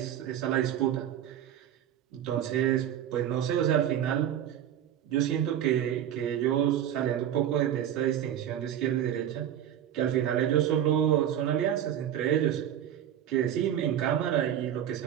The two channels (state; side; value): quieter; left; 10.6 dB